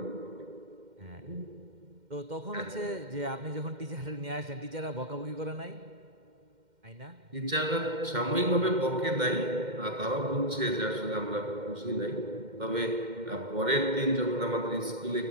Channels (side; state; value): left; late; 2.1 ms